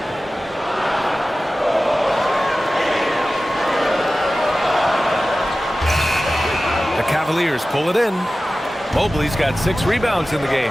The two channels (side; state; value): both; normal; correlation 0.96